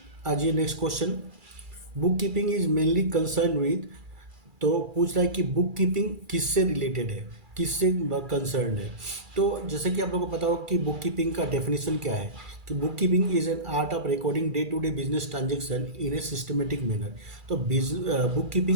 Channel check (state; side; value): late; left; 2.3 ms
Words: आज ये next question, book keeping is mainly concern with. तो पूछ रहा है कि बुक कीपिंग किससे रिलेटेड है, किससे कंसर्न है। तो जैसे कि आप लोगों को पता होगा कि बुक कीपिंग का डेफिनेशन क्या है, कि book keeping is an art of recording day to day business transaction in a systematic manner. तो बुक